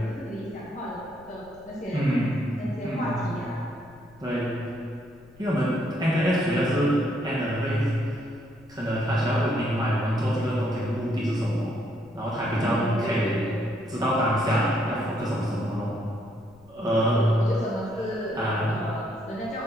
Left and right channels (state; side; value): noise; left; rumble, 25 dB below the sound